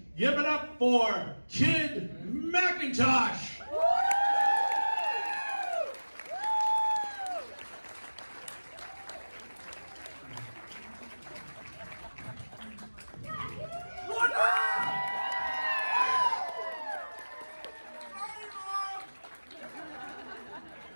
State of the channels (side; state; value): both; inverted; correlation -1.00